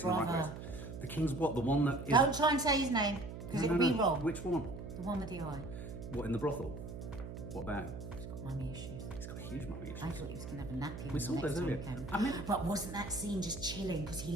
in the right place. The King's what? The one that is... Don't try and say his name, because it'll be wrong. Which one? The one with the eye. What, in the brothel? What about him? He's got mummy issues. He's got huge mummy issues. I thought he was going to have a nappy. We saw those earlier. But wasn't that scene just chilling? Because he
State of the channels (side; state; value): right; noise; hum, 9 dB below the sound